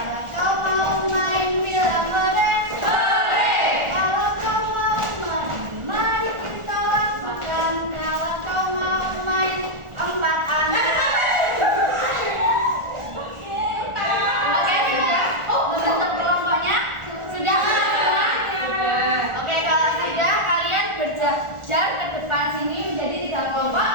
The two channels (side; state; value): left; late; 1.4 ms